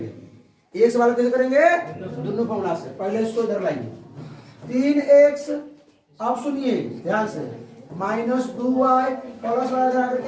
एक सवाल कैसे करेंगे? दोनों फॉर्मूला से। पहले इसको इधर लाइए, 3x, अब सुनिए ध्यान से, -2y प्लस वाला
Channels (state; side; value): identical; both; correlation 1.00